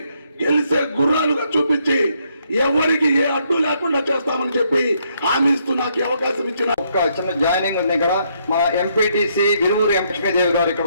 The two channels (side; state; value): both; inverted; correlation -0.73